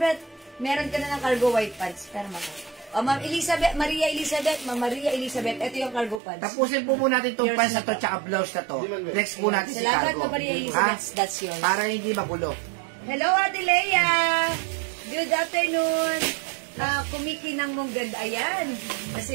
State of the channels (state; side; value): drops out; left; at 6.2 s